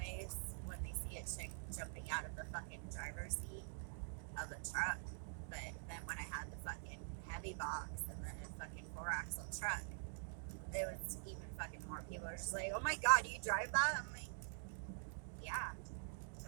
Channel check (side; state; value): left; silent; digital silence